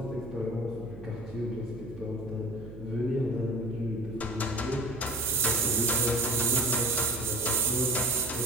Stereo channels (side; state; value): right; noise; hum, 14 dB below the sound